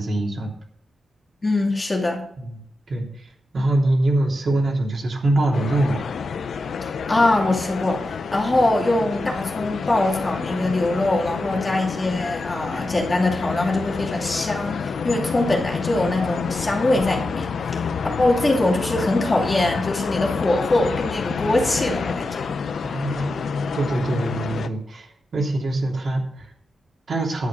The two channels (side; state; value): both; normal; correlation 0.90